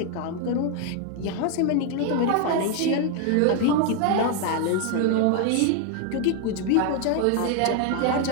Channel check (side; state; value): both; different; correlation 0.01